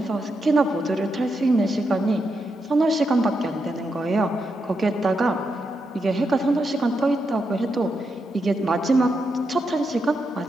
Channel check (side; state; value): both; normal; correlation 0.83